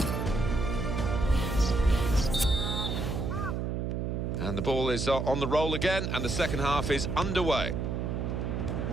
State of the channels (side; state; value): right; noise; hum, 1 dB below the sound